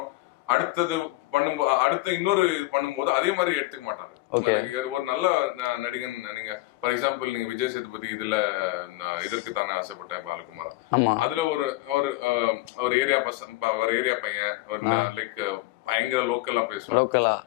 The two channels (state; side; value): quieter; right; 19.4 dB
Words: அடுத்த இன்னொரு பண்ணும்போது அதே மாதிரி எடுத்துக்க மாட்டாரு. ஒரு நல்ல நடிகன், நீங்க ஃபார் எக்ஸாம்பிள் நீங்க விஜய் சேதுபதி இதுல இதற்கு தானே ஆசைப்பட்டேன் பாலகுமாரன், அதுல ஒரு ஏரியா பையன், ஒரு லைக் பயங்கர லோக்கலா